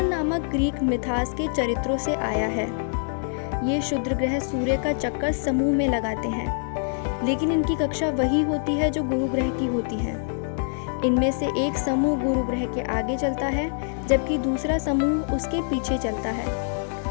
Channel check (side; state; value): right; silent; digital silence